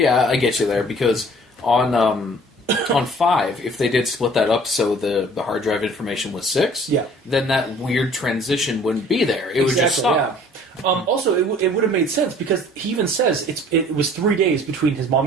yeah, I get you there because on 5, if they did split that up so the hard drive information was 6, Yeah. then that weird transition wouldn't be there. It would just stop. Yeah. Also, it would have made sense because he even says it was 3 days between his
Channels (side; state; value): both; normal; correlation 0.52